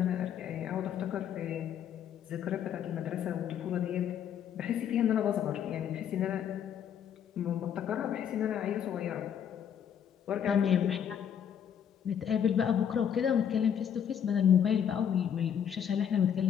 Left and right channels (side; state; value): right; quieter; 8.7 dB